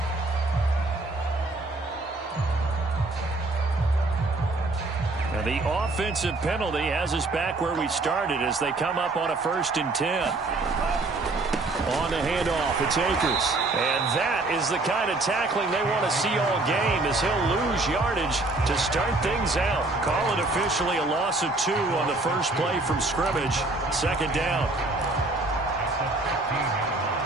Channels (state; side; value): quieter; left; 3.1 dB